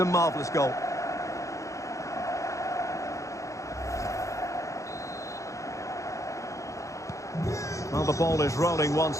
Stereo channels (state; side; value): late; right; 0.15 ms